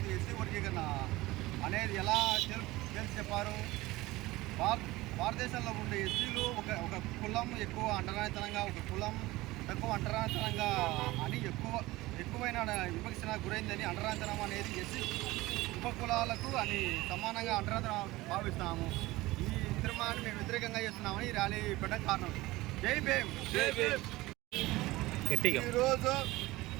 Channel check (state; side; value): quieter; left; 19.3 dB